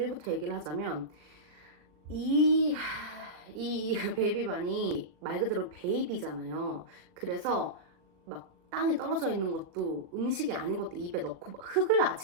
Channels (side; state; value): left; late; 39 ms